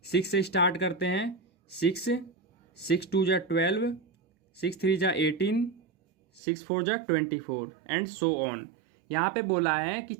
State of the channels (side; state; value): left; drops out; at 6.4 s